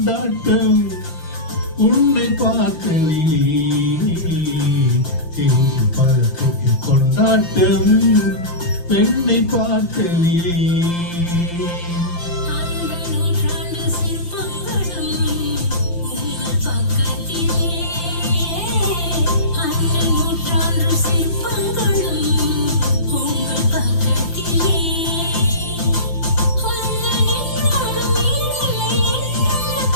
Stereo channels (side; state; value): right; late; 5.8 ms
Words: உன்னை பார்த்து தெரிந்து பழத்துக்கு கொண்டாட்டம் பெண்ணை பார்த்து